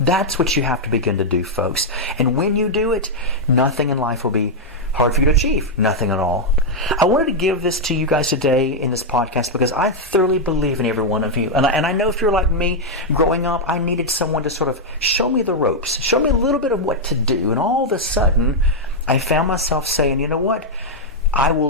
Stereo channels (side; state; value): both; normal; correlation -0.02